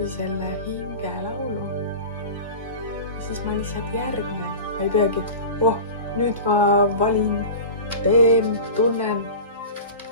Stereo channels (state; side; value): inverted; both; correlation -0.32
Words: selle hingelaulu. Siis ma lihtsalt järgnen, ma ei peagi, nüüd ma valin, teen, tunnen,